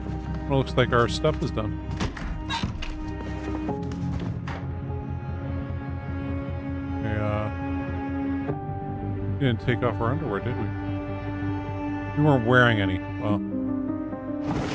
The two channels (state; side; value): identical; both; correlation 1.00